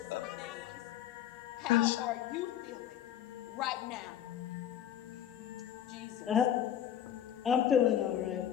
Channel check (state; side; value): quieter; right; 10.4 dB